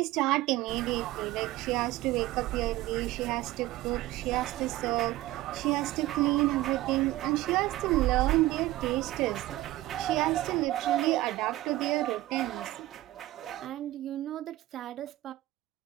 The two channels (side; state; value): left; quieter; 16.6 dB